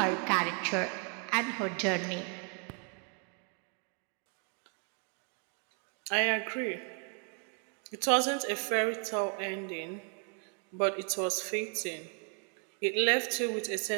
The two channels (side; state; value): left; quieter; 38.7 dB